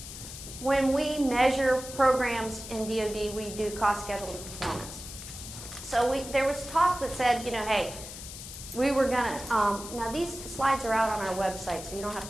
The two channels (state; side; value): noise; left; hiss, 11 dB below the sound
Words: when we measure programs in DoD, we do cost, schedule, and performance. So there was talk that said, you know, hey, we were gonna, now these slides are out on our website, so you don't have